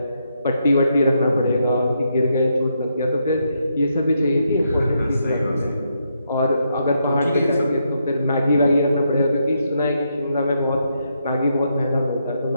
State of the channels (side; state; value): both; inverted; correlation -0.79